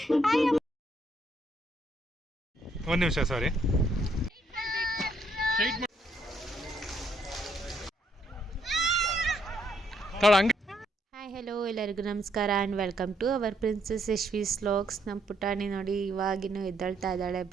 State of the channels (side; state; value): both; normal; correlation 0.72